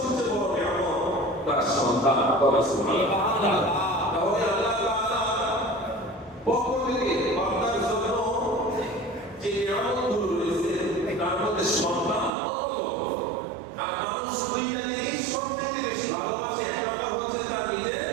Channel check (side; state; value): left; drops out; at 12.3 s